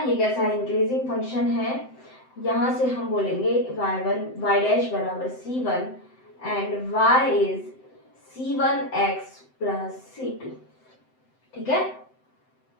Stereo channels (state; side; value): late; right; 7.8 ms